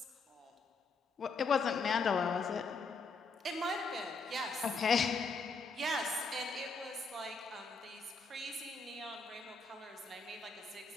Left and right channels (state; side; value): quieter; right; 4.1 dB